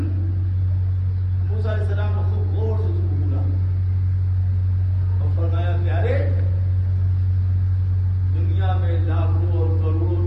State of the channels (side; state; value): both; identical; correlation 1.00